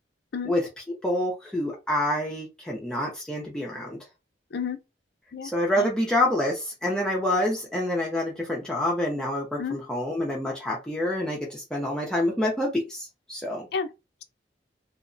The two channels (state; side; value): normal; both; correlation 0.55